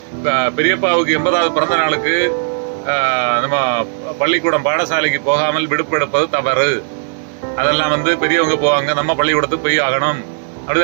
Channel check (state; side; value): silent; left; 69 dB below the other